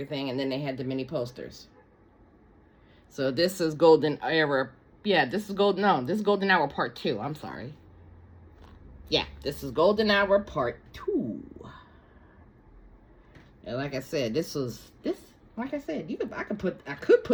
And then they had the mini posters. So this is Golden Hour. Yeah, this is Golden Hour Part 2. I'm sorry. Yeah, this is Golden Hour Part 2. And like I said, like I said, I could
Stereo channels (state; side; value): identical; both; correlation 1.00